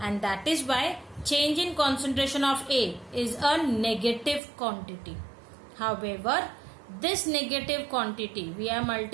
that is why change in concentration of A is a negative quantity. However, this negative quantity we are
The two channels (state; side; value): drops out; left; at 4.4 s